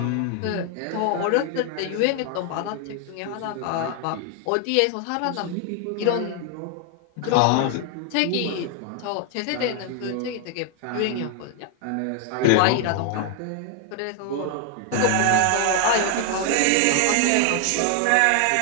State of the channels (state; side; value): different; both; correlation 0.00